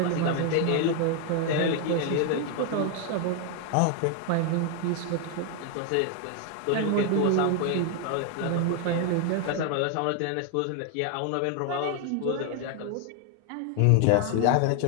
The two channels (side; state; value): both; different; correlation 0.00